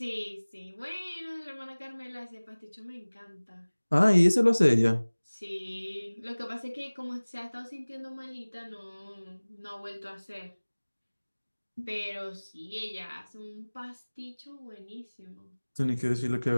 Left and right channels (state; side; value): inverted; both; correlation -1.00